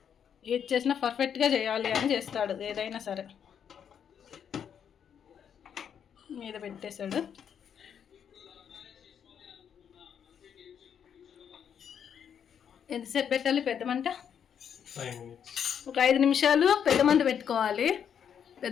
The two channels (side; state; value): right; quieter; 8.1 dB